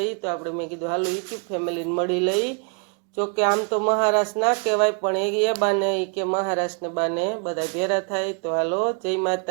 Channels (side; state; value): left; quieter; 38.1 dB